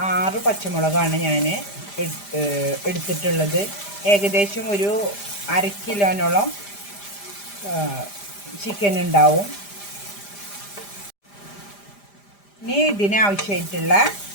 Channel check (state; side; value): late; right; 5.0 ms